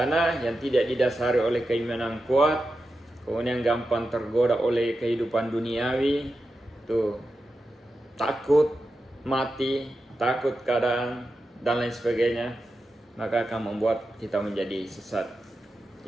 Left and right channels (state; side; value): normal; both; correlation 0.90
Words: yang tidak didasari oleh keimanan kuat, kemudian gampang tergoda oleh kehidupan duniawi, tuh takut mati, takut keadaan dan lain sebagainya, maka akan membuat kita menjadi sesat.